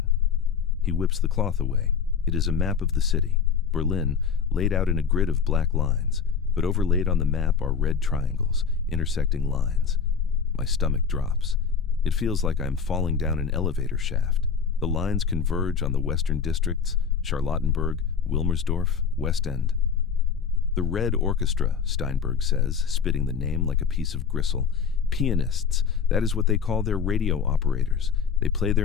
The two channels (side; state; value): right; quieter; 6.6 dB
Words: He whips the cloth away. It is a map of the city, Berlin, laid out in a grid of black lines, but overlaid on the map are red triangles, intersecting lines. My stomach drops. It feels like I'm falling down an elevator shaft. The lines converge on the western districts, Charlottenburg, Wilmersdorf, West End. "The Red Orchestra," Steinberg says, spitting the name like a piece of gristle. "Pianists, that is what they call their radio operators. They play